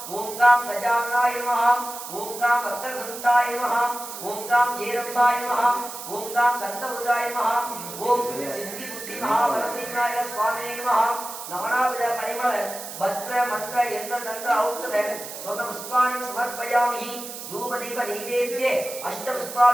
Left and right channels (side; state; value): right; noise; hiss, 10 dB below the sound